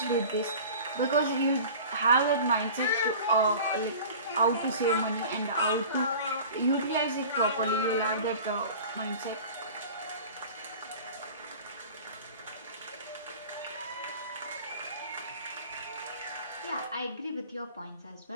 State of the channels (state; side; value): inverted; both; correlation -0.40